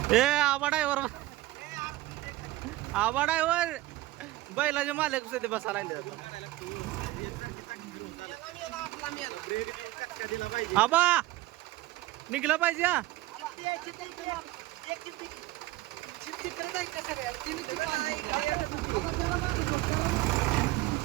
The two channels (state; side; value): quieter; left; 17.6 dB